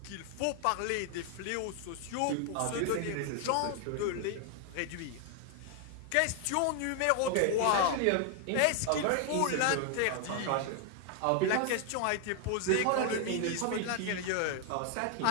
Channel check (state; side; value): different; both; correlation 0.00